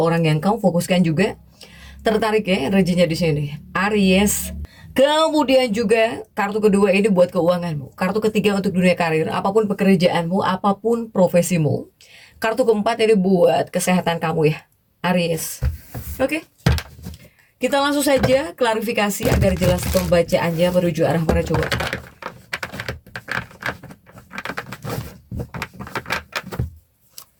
yang kamu fokuskan juga tertarik ya energinya di sini. Aries. Kemudian juga kartu kedua ini buat keuanganmu. Kartu ketiga untuk dunia karir, apapun pekerjaanmu, apapun profesimu. Kartu keempat ini buat kesehatan kamu ya, Aries. Oke. Kita langsung saja klarifikasi agar jelas pembacaannya menuju arah mana coba.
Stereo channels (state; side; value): identical; both; correlation 1.00